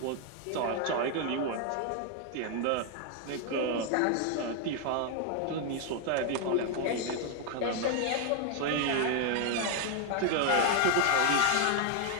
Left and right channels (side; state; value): both; different; correlation 0.00